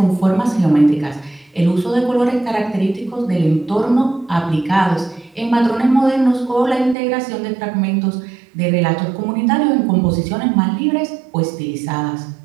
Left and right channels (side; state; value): left; drops out; at 7.0 s